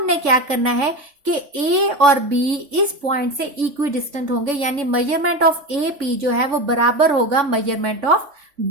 क्या करना है कि ए और बी इस पॉइंट से इक्वी डिस्टेंट होंगे, यानी मेजरमेंट ऑफ ए पी जो है वो बराबर होगा मेजरमेंट ऑफ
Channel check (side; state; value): left; late; 3.5 ms